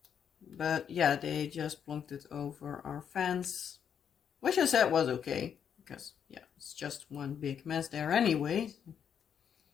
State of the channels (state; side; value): quieter; right; 8.0 dB